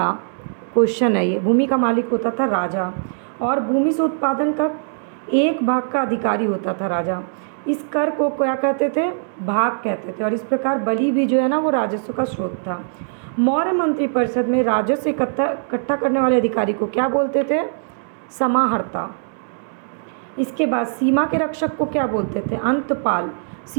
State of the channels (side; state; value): left; silent; digital silence